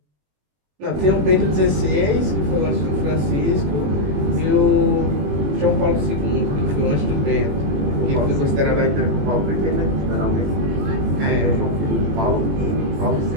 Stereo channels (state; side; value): late; left; 21 ms